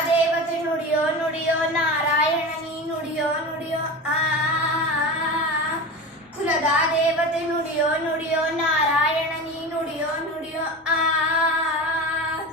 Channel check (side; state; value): both; normal; correlation 0.28